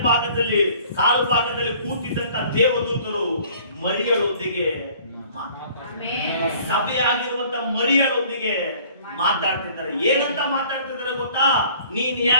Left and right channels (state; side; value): inverted; both; correlation -0.53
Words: ಭಾಗದಲ್ಲಿ ಕಾಲು ಭಾಗದಲ್ಲಿ ಕೂತಿದ್ದಂತ ದೇವದೂತರು ಮರಿಯಳೊಂದಿಗೆ, ಸಭೆಯಾಗಿರುವಂತ ಮರಿಯಳೊಂದಿಗೆ ಮಾತಾಡ್ತಿದ್ದಾರೆ. ಏನಂತ ಮಾತಾಡ್ತಿದ್ದಾರೆ ಗೊತ್ತಾ? ನೀನ್